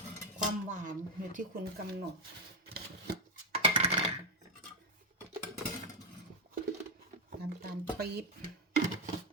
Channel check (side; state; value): both; normal; correlation 0.05